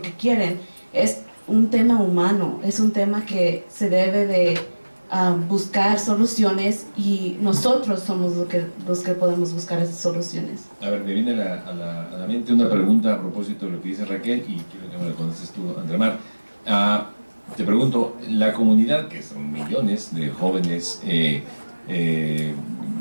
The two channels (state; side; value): inverted; both; correlation -1.00